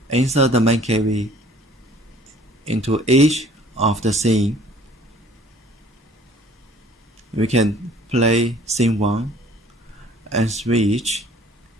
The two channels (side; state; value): both; normal; correlation 0.54